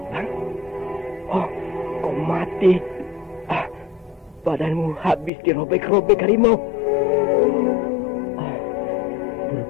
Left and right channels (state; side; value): drops out; right; at 5.3 s